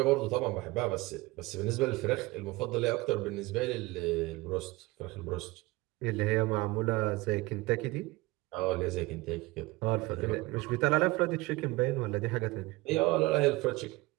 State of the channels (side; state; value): left; quieter; 21.4 dB